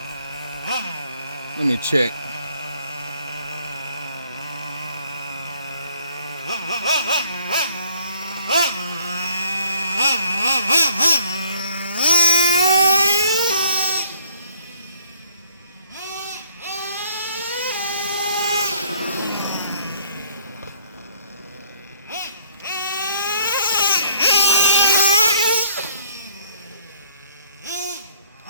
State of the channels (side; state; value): both; inverted; correlation -0.60